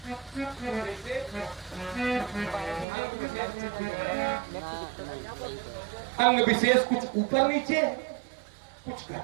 अंग विशेष कुछ ऊपर नीचे, कुछ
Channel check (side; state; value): left; drops out; at 2.9 s